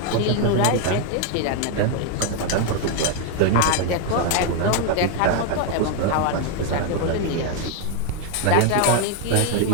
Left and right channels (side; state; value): both; different; correlation 0.01